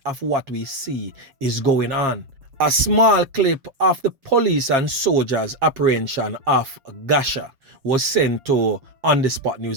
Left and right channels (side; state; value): left; late; 7.4 ms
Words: of what we see is going on. A small clip of the police and soldiers' apprehension of Gasha was sent to On The Spot